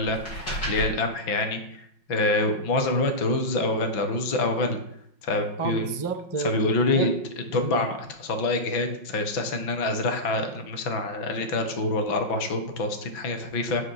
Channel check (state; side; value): late; right; 5.4 ms